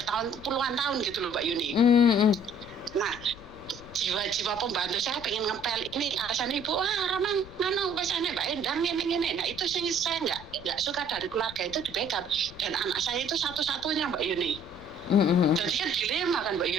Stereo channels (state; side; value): noise; left; rumble, 18 dB below the sound